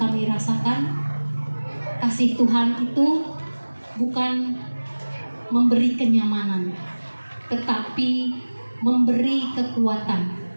rasakan. Kasih Tuhan itu bukan memberi kenyamanan, tetapi memberi kekuatan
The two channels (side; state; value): both; inverted; correlation -1.00